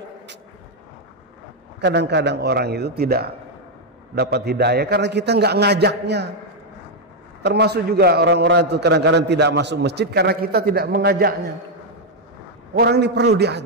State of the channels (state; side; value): normal; both; correlation 0.00